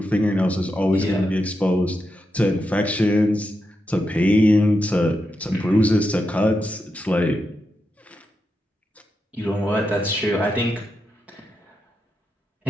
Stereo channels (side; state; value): both; normal; correlation 0.86